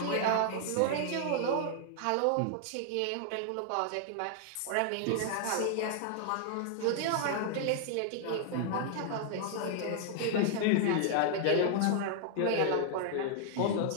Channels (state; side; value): different; both; correlation 0.00